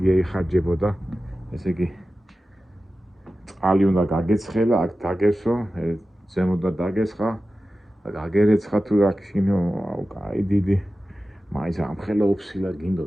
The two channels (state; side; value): normal; both; correlation 0.94